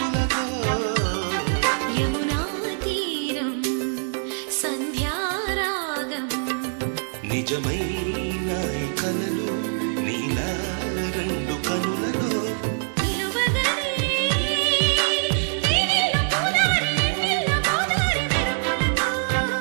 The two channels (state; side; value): silent; left; digital silence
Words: యమునా తీరం సంధ్యారాగం నిజమైన ఈ కలలు నీలా రెండు కనులలో నిలువగనే తేనెల్లో గోదారి ఎన్నెల్లో గోదారి మెరుపులతో